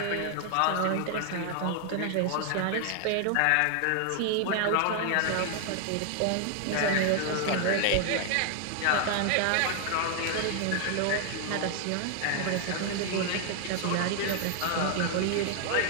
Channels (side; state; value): both; different; correlation 0.00